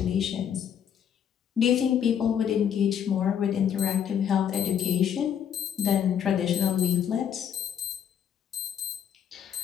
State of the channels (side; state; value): right; quieter; 8.7 dB